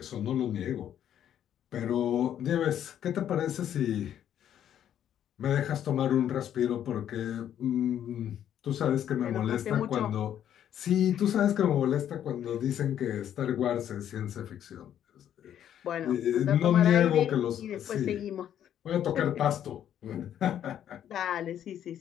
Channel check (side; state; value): right; quieter; 10.3 dB